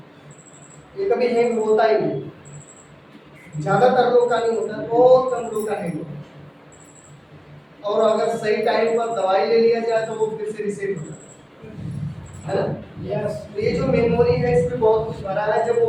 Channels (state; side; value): identical; both; correlation 1.00